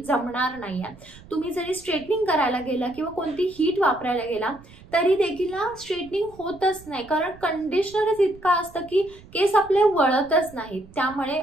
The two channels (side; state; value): right; noise; rumble, 22 dB below the sound